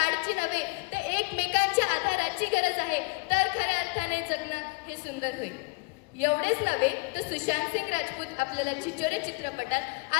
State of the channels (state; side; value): quieter; right; 28.5 dB